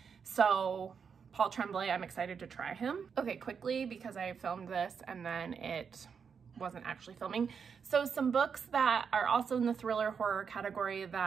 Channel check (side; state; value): left; quieter; 6.4 dB